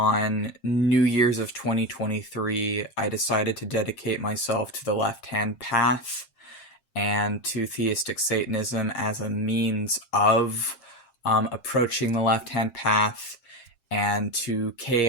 New Year's of 2023, I decided to dedicate myself to the left hand path and to theistic Satanism as a means of approaching the left hand path, and to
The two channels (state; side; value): late; right; 7.5 ms